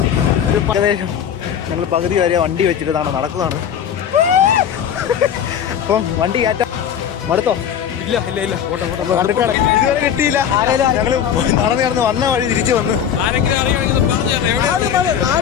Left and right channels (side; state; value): right; quieter; 8.8 dB